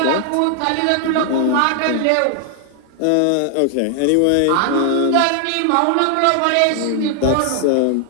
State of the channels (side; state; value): both; different; correlation 0.00